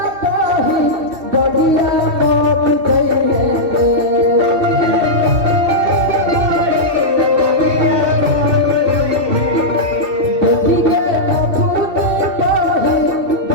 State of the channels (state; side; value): late; left; 2.7 ms